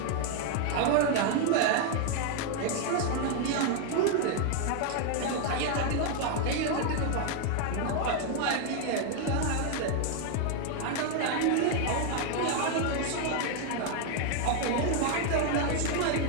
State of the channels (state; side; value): different; both; correlation 0.01